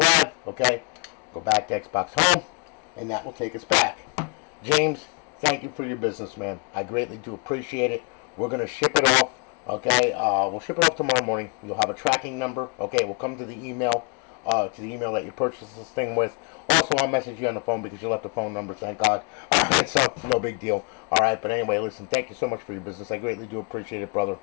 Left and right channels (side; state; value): right; quieter; 34.8 dB